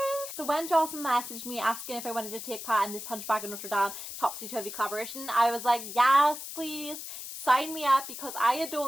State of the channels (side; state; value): left; noise; hiss, 9 dB below the sound